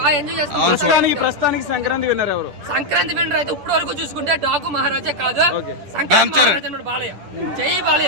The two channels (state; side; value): late; left; 10 ms